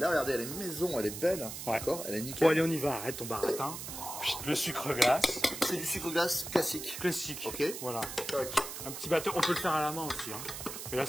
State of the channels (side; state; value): right; noise; hiss, 8 dB below the sound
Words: regardez, elle est maison, elle est belle, Ouais. d'accord, elle est nickel. Bon, allez, on y va, arrête ton baratin. Le sucre glace. C'est du sucre glace classique. Classique. Ok. Voilà. Tac. Un petit batteur, on peut le faire à la main aussi. Hein. Mais là,